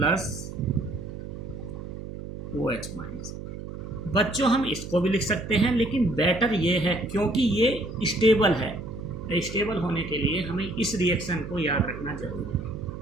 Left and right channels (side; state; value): right; noise; hum, 10 dB below the sound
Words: OH माइनस। बच्चों हम इसको भी लिख सकते हैं, लेकिन बेटर ये है क्योंकि ये स्टेबल है। स्टेबल होने के लिए हमें इस रिएक्शन को याद रखना जरूरी है।